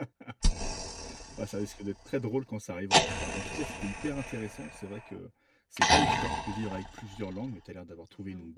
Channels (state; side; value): identical; both; correlation 1.00